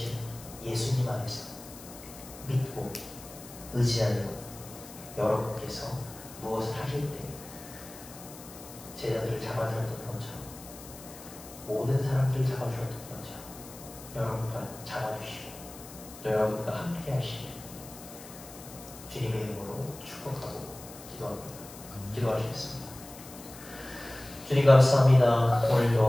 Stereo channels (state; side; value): noise; left; hiss, 16 dB below the sound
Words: 예수님 안에서 믿고 의지하는 여러분께서 무엇을 하실 때 제자들을 잡아주었던 것처럼 모든 사람들을 잡아주었던 것처럼 여러분과 잡아주시고 또 여러분과 함께 하시길 주님의 이름으로 축복하고 기도하시겠습니다. 주님 감사합니다.